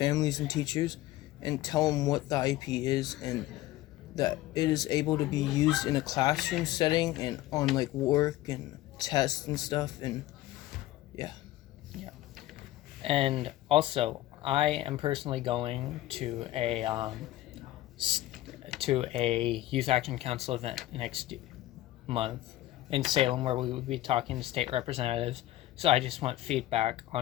and teachers and tell them what the IEP is and that it is able to be used in a classroom setting and on like work and tests and stuff, and yeah. And also, I am personally going to a Youth Action Council event next month in Salem, where we will be talking to state representatives. So I just want feedback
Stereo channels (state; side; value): quieter; right; 15.6 dB